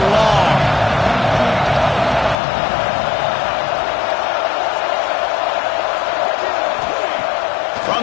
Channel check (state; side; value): drops out; right; at 2.4 s